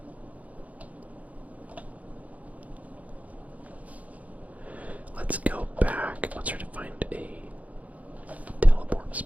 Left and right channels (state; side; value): late; left; 0.071 ms